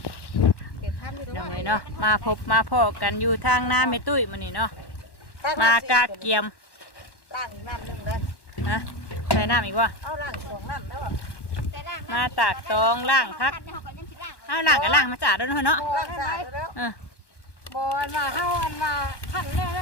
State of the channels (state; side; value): late; right; 1.1 ms